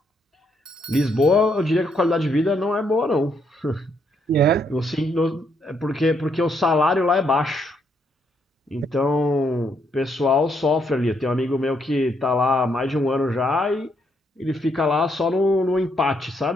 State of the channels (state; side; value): normal; both; correlation 0.74